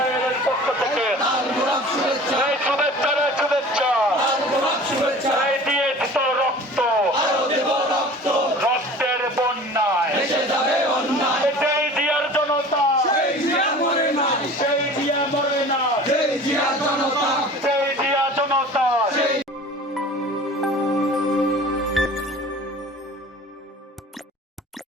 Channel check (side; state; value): both; normal; correlation 0.42